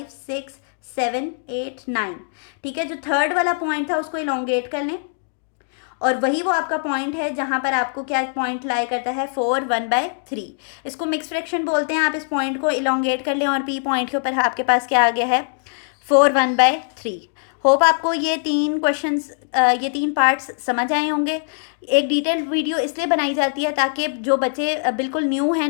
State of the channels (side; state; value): right; silent; digital silence